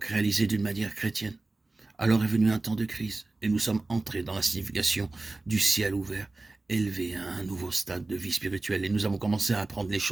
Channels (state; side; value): quieter; left; 3.1 dB